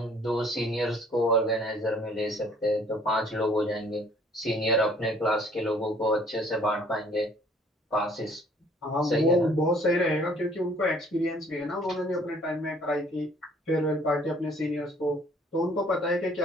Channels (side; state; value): both; normal; correlation 0.58